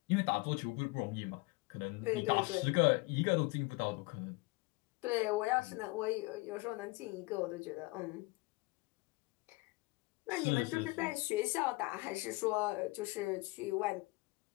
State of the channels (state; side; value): quieter; right; 24.2 dB